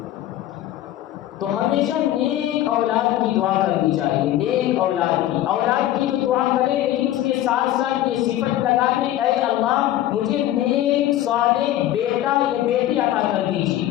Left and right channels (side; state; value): right; quieter; 13.4 dB